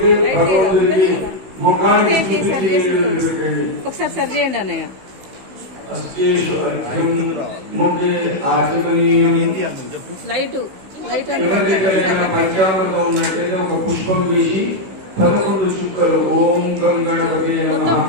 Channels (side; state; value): left; late; 16 ms